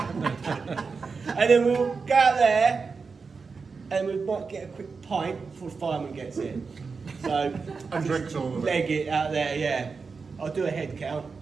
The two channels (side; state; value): left; quieter; 4.9 dB